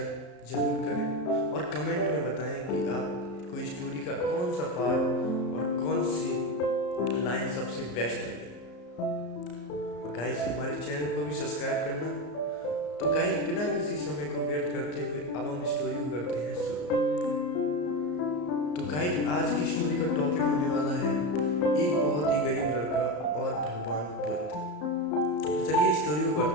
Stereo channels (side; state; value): right; late; 34 ms